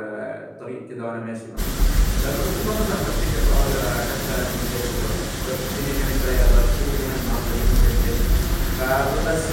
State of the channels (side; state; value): both; identical; correlation 1.00